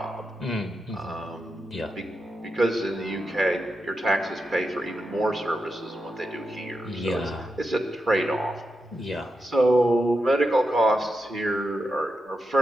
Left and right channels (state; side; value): normal; both; correlation 0.87